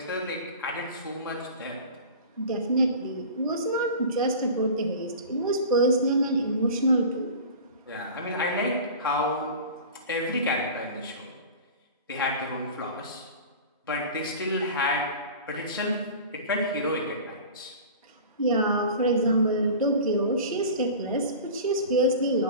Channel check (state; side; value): inverted; both; correlation -0.36